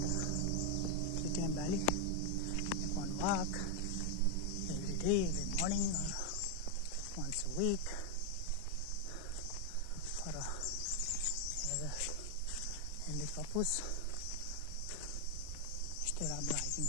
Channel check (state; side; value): different; both; correlation 0.01